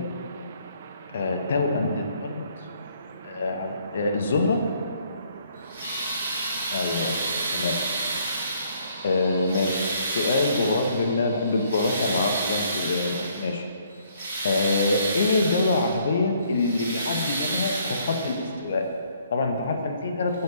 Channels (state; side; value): inverted; both; correlation -0.65